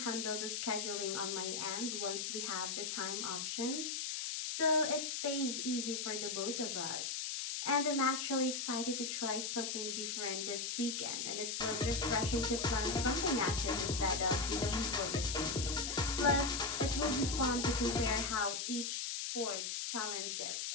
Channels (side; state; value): left; noise; hiss, 2 dB below the sound